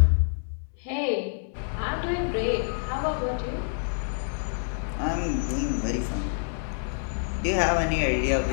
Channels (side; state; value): right; silent; 60 dB below the other